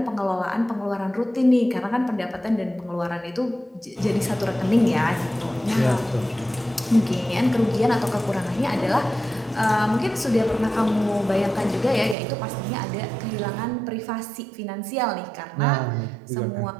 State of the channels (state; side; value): drops out; left; at 12.2 s